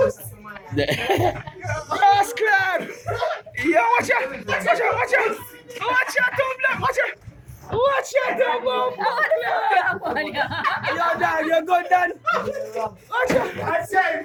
Yes, club. Yo, watch out. Watch out. Watch out. Watch out, Tom. Watch out. Watch out, Tom. Yo, Dan. You're good, Dan. Watch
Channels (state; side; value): identical; both; correlation 1.00